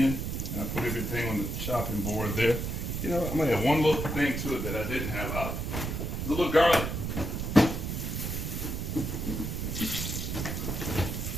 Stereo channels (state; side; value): noise; right; rumble, 3 dB below the sound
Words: and I put everything on the chopping board there. I'm going to add one little thing to it that I didn't have. A little garlic.